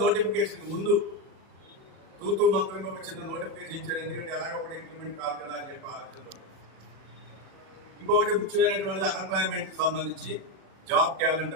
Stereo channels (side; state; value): left; late; 37 ms